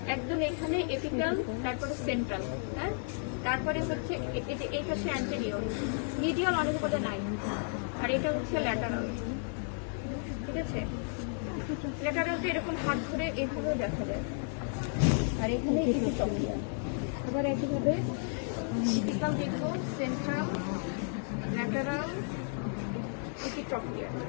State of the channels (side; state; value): right; silent; 56 dB below the other